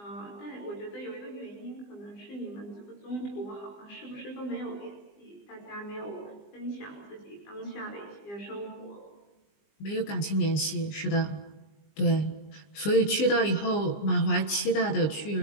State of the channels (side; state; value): right; late; 20 ms